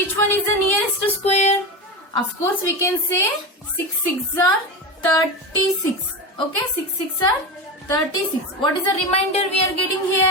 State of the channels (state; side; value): normal; both; correlation 0.21